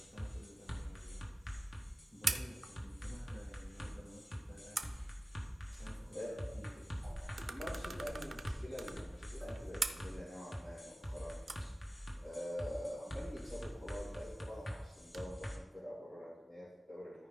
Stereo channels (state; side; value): normal; both; correlation 0.96